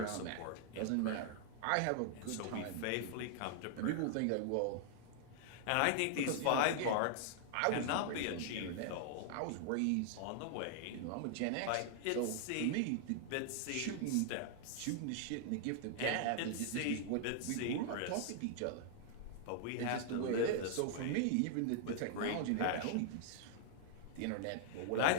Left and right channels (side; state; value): both; different; correlation -0.01